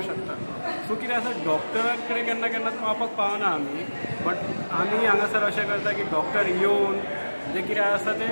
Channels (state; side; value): inverted; both; correlation -1.00